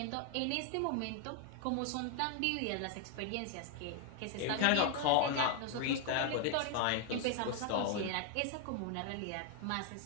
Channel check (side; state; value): both; different; correlation 0.01